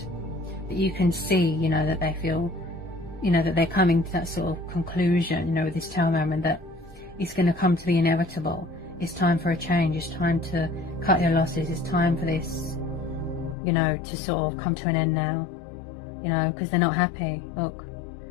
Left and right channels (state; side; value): drops out; right; at 13.6 s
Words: But you can see, you know, that they feel, you know, that they're coming to that sort of conclusion, you know, with this Tower moment, that it's going to come to the inevitable. It's time for a change. It's time to cut your losses. It's time for this, you know, to sort of come to an end now, you know, because they're not happy. Look,